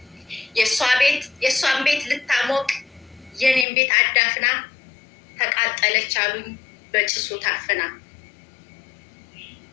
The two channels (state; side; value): drops out; right; at 3.7 s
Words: የእሷን ቤት ልታሞቅ የኔን ቤት አዳፍና ተቃጠለች አሉኝ በጭሱ ታፍና።